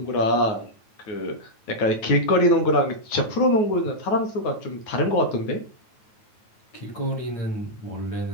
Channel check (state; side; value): late; right; 9.2 ms